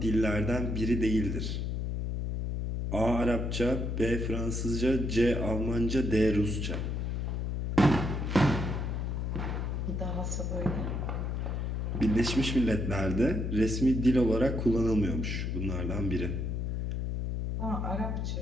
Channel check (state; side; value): noise; left; hum, 1 dB below the sound